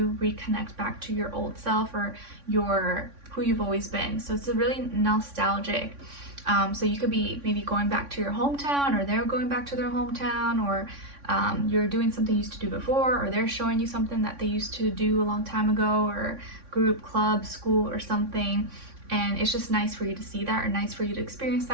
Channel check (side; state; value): left; late; 3.6 ms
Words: reconnect back to your old self, or your who you've always been. So it's a really nostalgic. So you could be maybe going back to your hometown, or they're going back to their hometown, or you're doing something you used to do before, or they're showing you something that they used to do a long time ago, or group, club, school, or something. And it's just nice for you to see that, or nice for you to experience